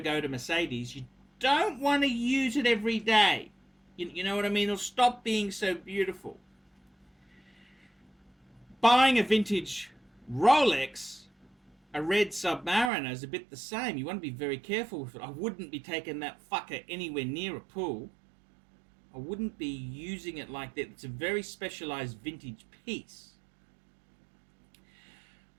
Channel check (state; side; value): drops out; left; at 12.9 s